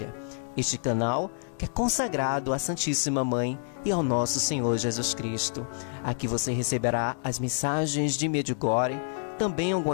Este canal que é consagrado à Santíssima Mãe e ao nosso Senhor Jesus Cristo. Aqui você receberá as mensagens de Medjugorje, também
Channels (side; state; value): right; silent; 59 dB below the other